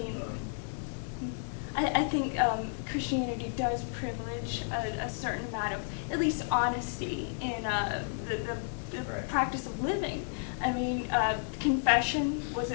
I think Christianity does privilege a certain amount of, at least, honesty in the Right. practice of living. I mean, confession was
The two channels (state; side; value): silent; right; digital silence